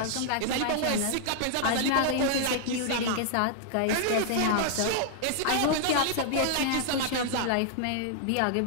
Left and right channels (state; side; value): different; both; correlation -0.01